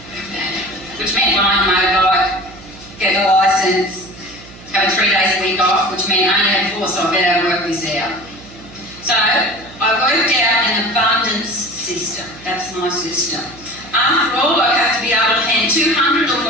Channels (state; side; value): noise; right; hum, 20 dB below the sound